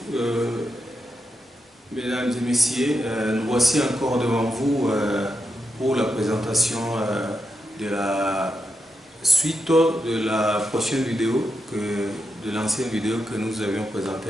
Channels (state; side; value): normal; both; correlation 0.86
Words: mesdames et messieurs. Nous voici encore devant vous pour la présentation de la suite de la prochaine vidéo, de l'ancienne vidéo que nous avions présentée